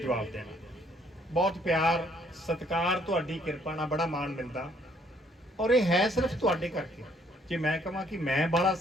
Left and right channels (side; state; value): both; normal; correlation 0.65